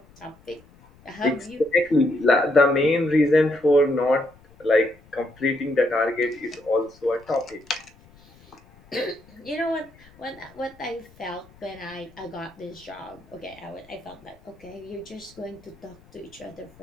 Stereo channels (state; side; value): noise; left; rumble, 27 dB below the sound